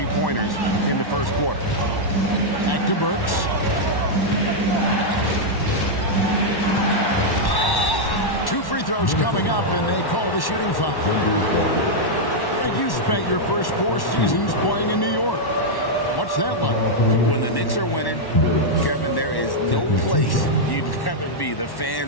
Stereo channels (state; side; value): late; right; 1.1 ms